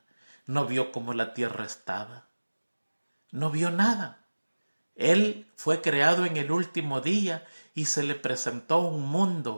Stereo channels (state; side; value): inverted; both; correlation -1.00